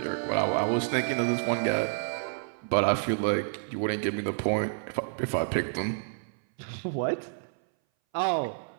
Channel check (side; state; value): left; silent; 58 dB below the other